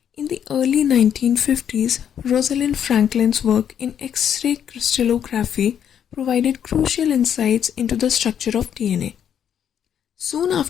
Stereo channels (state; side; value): quieter; right; 9.0 dB